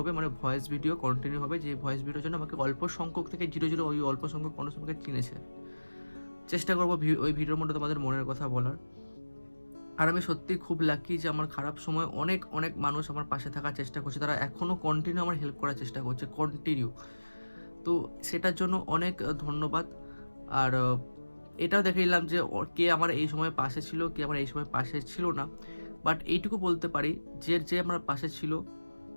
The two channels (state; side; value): inverted; both; correlation -1.00